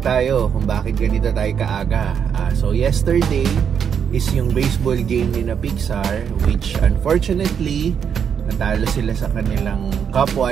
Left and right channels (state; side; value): quieter; left; 7.6 dB